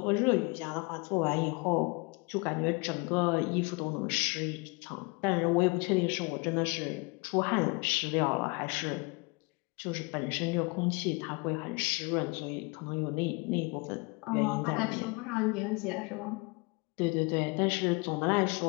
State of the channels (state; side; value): quieter; right; 28.7 dB